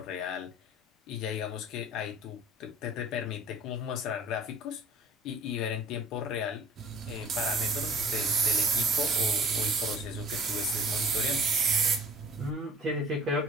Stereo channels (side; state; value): both; normal; correlation 0.49